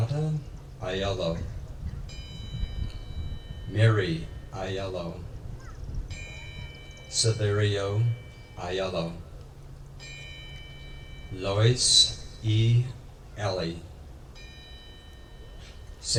Aiello. Mary Aiello. Severio Aiello. Lois E. Ellie.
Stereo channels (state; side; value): identical; both; correlation 1.00